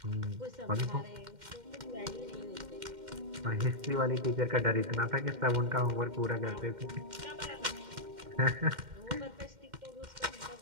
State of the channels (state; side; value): late; left; 2.1 ms